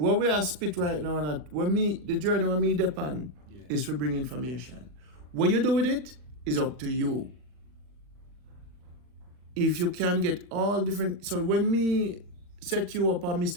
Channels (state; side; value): late; left; 40 ms